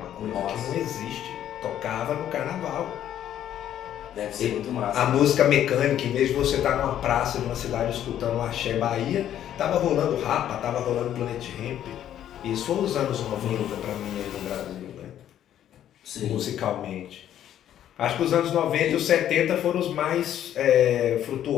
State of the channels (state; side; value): quieter; right; 11.0 dB